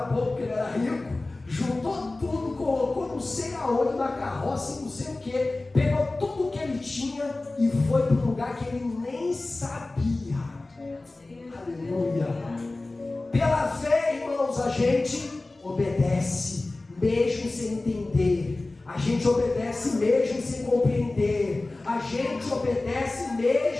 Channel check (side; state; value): right; quieter; 3.1 dB